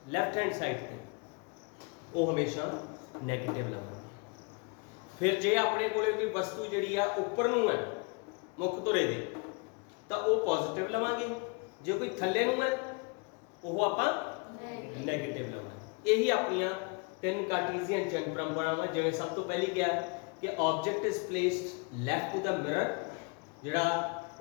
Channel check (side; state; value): right; quieter; 32.3 dB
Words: लैफ्ट हैंड साइड पे वो हमेशा नैगेटिव लवांगे। फिर जे अपने कोले कोई वस्तु जिहड़ी आ उपर नूं है मुख धुरे दे तो वो पॉजिटिव लवांगे, जो कोई थल्ले नूं है वो आपां नैगेटिव लवांगे। यही अपनियां तीन कार्टीजियन चिन्ह परंपरावां। जिवें सब तो पहली क्या कि object is placed left to the mirror, जिहड़ा